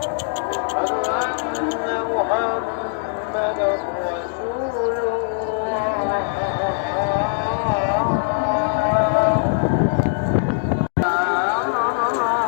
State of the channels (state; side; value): silent; right; digital silence